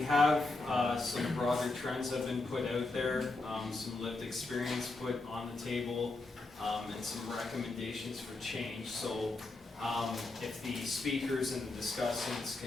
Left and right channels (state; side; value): quieter; right; 3.2 dB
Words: have some broader trends that have been put out there, some lived experience put on the table, and some recommendations for change. So if the speakers and the discussants